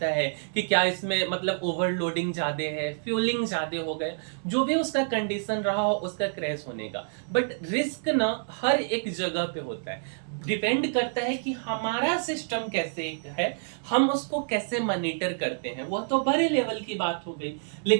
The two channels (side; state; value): left; silent; digital silence